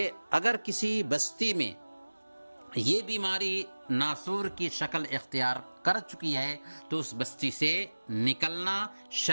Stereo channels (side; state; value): both; inverted; correlation -1.00